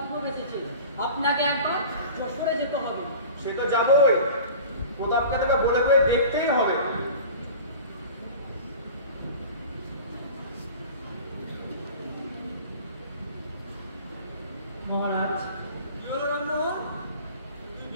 এসেছে। আপনাকে একবার যশোরে যেতে হবে। সে তো যাবই, প্রতাপকে তবে বলে বলে দেখতেই হবে। মহারাজ, কি হলো রামমোহন? তুই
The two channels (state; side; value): inverted; both; correlation -0.39